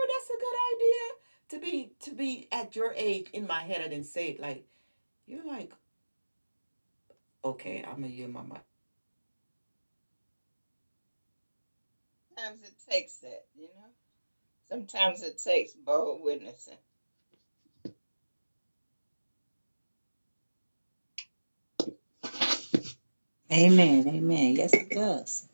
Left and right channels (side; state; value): both; inverted; correlation -1.00